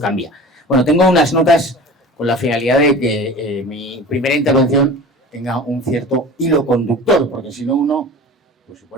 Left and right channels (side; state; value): both; normal; correlation 0.38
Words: Bueno, tengo unas notas con la finalidad de que mi primera intervención tenga un cierto hilo conductor, porque si no uno pues se